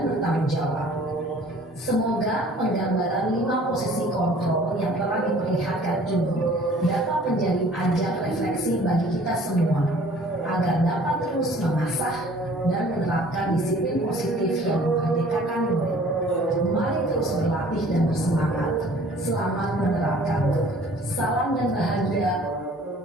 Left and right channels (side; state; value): both; normal; correlation 0.52